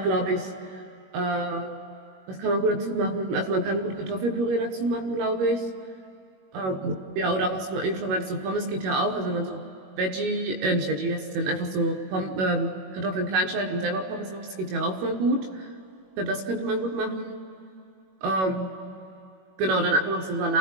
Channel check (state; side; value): late; left; 21 ms